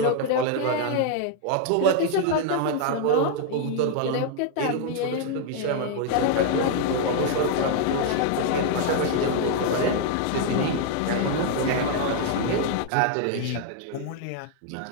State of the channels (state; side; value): different; both; correlation 0.00